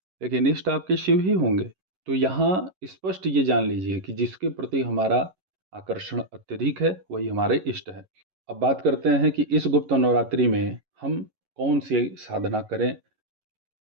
लेकिन इष्ट आपके शिव ही होंगे। तो यहाँ स्पष्ट ये जान लीजिए कि जिसके प्रति हमारा आकर्षण अत्यधिक है वही हमारे इष्ट है। अब बात करते हैं कि इस गुप्त नवरात्रि में हम कौन सी साधना करें,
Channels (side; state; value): left; late; 11 ms